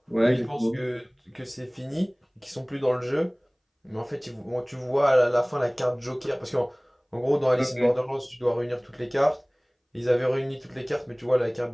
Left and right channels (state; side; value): identical; both; correlation 1.00